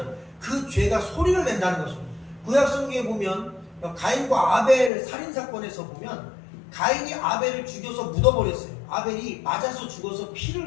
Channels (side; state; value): right; drops out; at 4.9 s